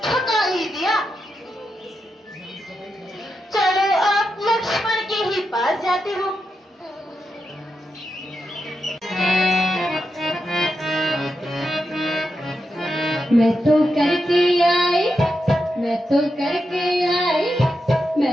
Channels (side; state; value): both; normal; correlation 0.86